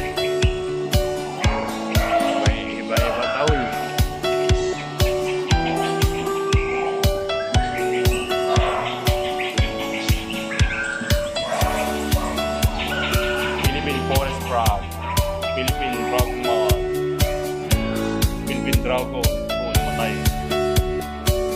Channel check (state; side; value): identical; both; correlation 1.00